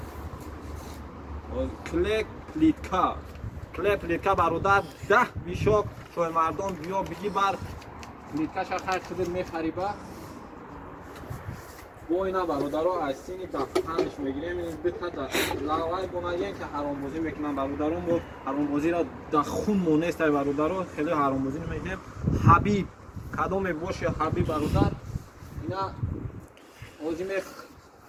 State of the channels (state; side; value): identical; both; correlation 1.00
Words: клеп плитка бародар 10 бишок шоҳи мардон биё биги бар плиткаша хай худир мехариба бо ина бародаро айсини дафтанш мегирем битада лавай бонаген ки ҳаромбозӣ мекунам бародаро мо ҳаромбозиро да хун монестай бародаро хеле ҳаромбозӣ намекунем ҳабиб кадоме боши ҳабиб бародар ина ҳози